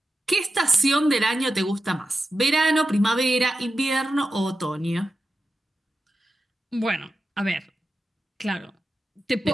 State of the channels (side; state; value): both; normal; correlation 0.91